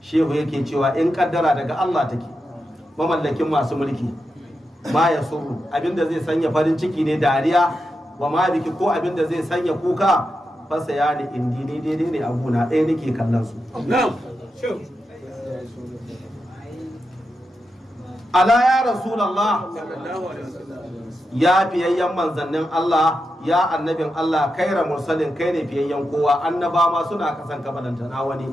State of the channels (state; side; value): normal; both; correlation 0.88